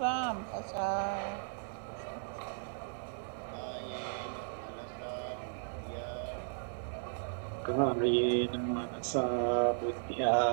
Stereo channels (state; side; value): silent; left; 54 dB below the other